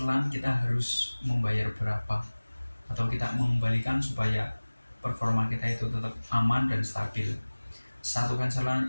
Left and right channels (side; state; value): both; inverted; correlation -1.00